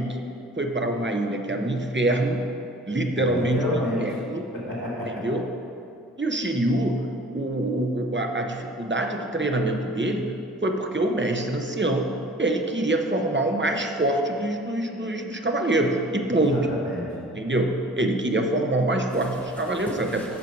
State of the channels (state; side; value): normal; both; correlation 0.47